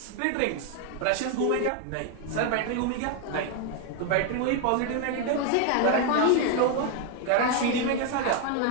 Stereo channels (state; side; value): different; both; correlation 0.01